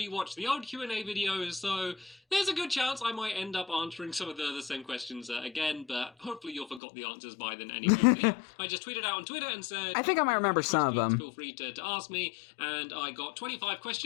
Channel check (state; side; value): drops out; right; at 6.8 s